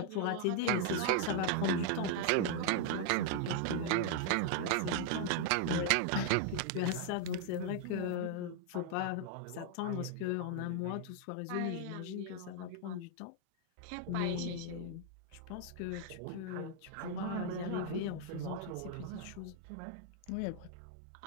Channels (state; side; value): different; both; correlation 0.00